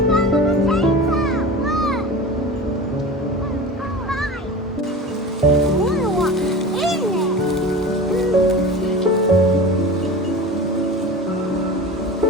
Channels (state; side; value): normal; both; correlation 0.33